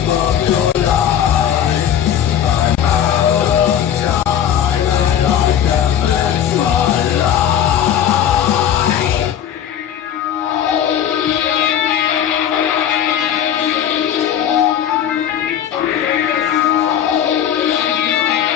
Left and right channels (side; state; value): right; quieter; 9.8 dB